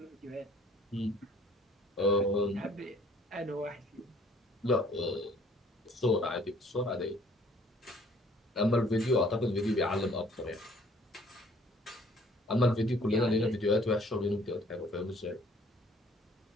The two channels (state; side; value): normal; both; correlation 0.58